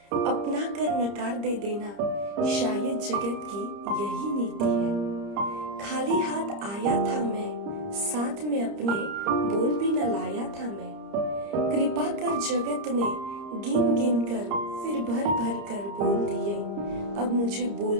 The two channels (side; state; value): left; late; 30 ms